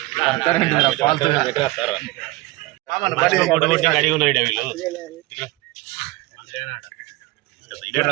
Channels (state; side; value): quieter; left; 20.0 dB